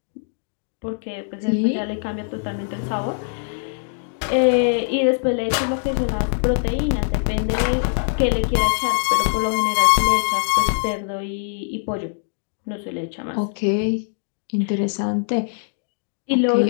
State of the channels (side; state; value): right; silent; digital silence